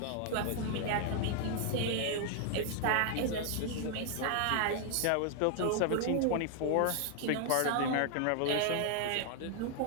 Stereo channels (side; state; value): both; different; correlation 0.00